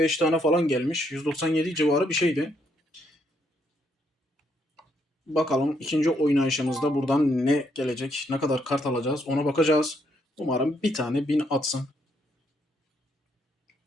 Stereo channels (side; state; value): both; normal; correlation 0.74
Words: tane falan gelmiş. 197 civarı bir şeydi. Bakalım ikinci oynayışımızda buradan ne gelecek, ne kadar kart alacağız ona bakacağız. Umarım bir tane 1000 atsın.